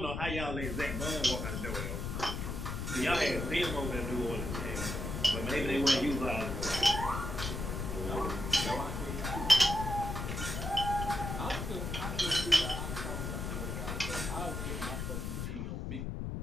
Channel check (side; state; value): left; noise; rumble, 4 dB below the sound